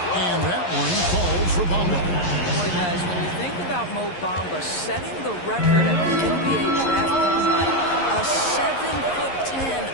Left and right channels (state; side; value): late; right; 11 ms